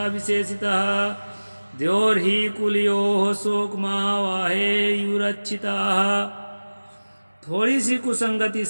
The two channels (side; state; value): both; inverted; correlation -1.00